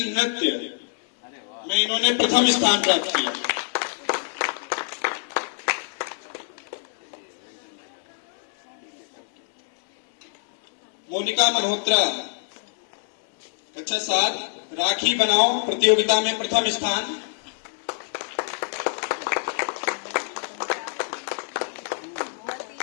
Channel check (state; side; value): silent; right; 55 dB below the other